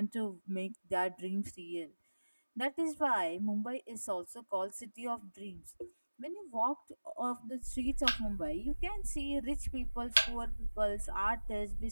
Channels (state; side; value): inverted; both; correlation -1.00